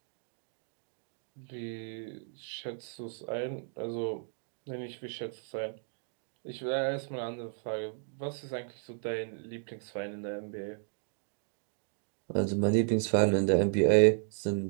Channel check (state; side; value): silent; left; digital silence